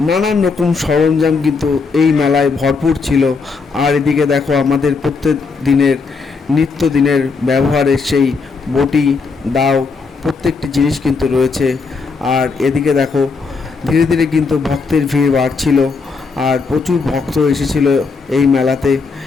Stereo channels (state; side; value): quieter; right; 4.7 dB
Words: নানান রকম সরঞ্জাম কিন্তু এই মেলায় ভরপুর ছিল। আর এদিকে দেখো আমাদের প্রত্যেক দিনের নিত্যদিনের ব্যবহারের সেই বটি, দাও, প্রত্যেকটি জিনিস কিন্তু রয়েছে। আর এদিকে দেখো ধীরে ধীরে কিন্তু ভক্তের ভিড় বাড়ছিল। আর প্রচুর ভক্ত এসেছিল এই মেলাতে।